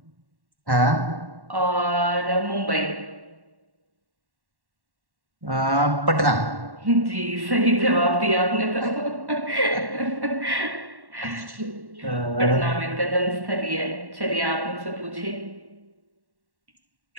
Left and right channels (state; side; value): late; left; 1.1 ms